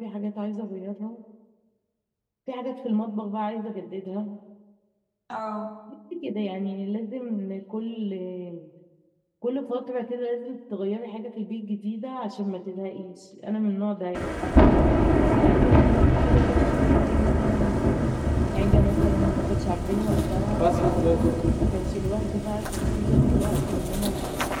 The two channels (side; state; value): both; identical; correlation 1.00